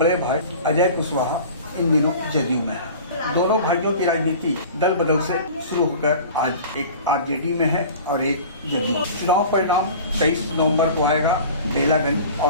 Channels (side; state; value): both; inverted; correlation -0.40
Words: भाई अजय कुशवाहा इन दिनों जदयू में है। दोनों भाइयों की राजनीति दल बदल से शुरू होकर आज एक आरजेडी में है और एक जदयू। चुनाव परिणाम 23 नवंबर को आएगा बेलागंज